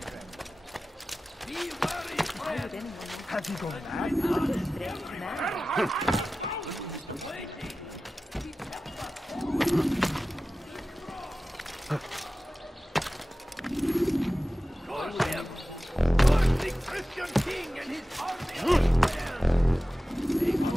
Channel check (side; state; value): both; normal; correlation 0.95